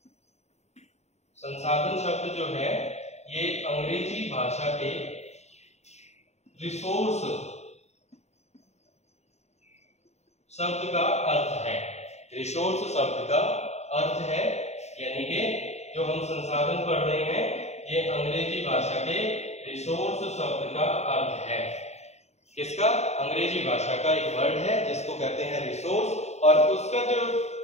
संसाधन शब्द जो है, ये अंग्रेजी भाषा के रिसोर्स शब्द का अर्थ है। रिसोर्स शब्द का अर्थ है, यानी कि जो हम संसाधन पढ़ रहे हैं, ये अंग्रेजी भाषा के रिसोर्स शब्द का अर्थ है। किसका? अंग्रेजी भाषा का एक वर्ड है जिसको कहते हैं रिसोर्स, और उसका जो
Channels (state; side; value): late; right; 0.32 ms